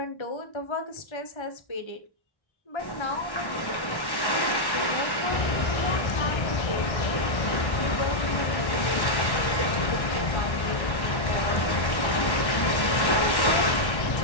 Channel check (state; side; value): late; right; 1.1 ms